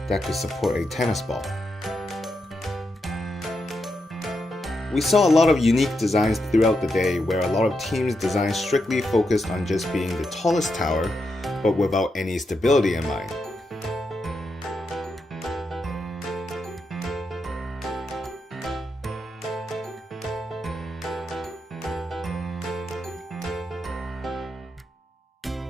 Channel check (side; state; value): both; normal; correlation 0.84